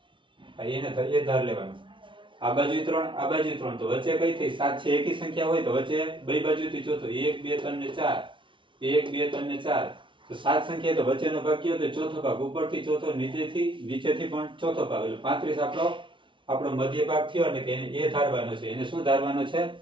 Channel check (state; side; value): late; left; 0.24 ms